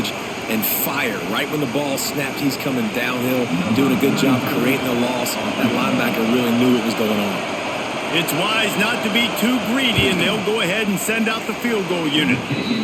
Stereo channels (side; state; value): both; identical; correlation 1.00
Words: and fire. Right when the ball snapped, he's coming downhill, doing a good job creating the loss. That linebacker really knew what was going on. It's wise not to be too greedy, and they'll go ahead and send out the field goal unit.